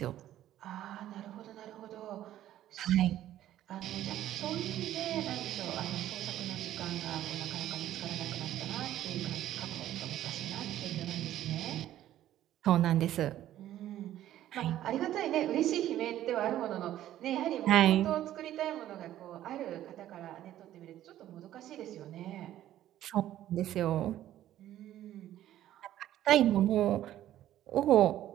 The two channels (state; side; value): quieter; left; 12.8 dB